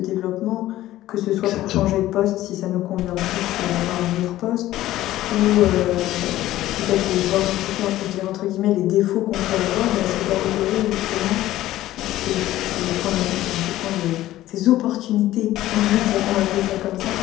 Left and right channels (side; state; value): right; quieter; 14.9 dB